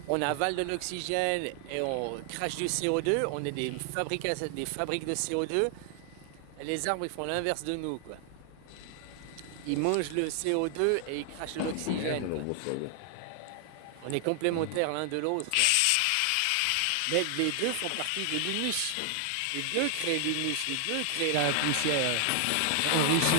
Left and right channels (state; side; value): different; both; correlation 0.00